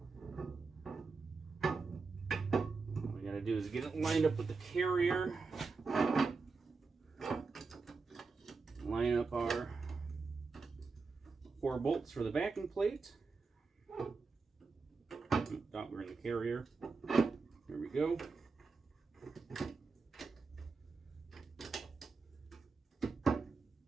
All we got to do is get it lined up with the carrier. Line up our 4 bolts for the backing plate. Thought we were in the carrier. There we go.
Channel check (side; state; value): left; quieter; 4.4 dB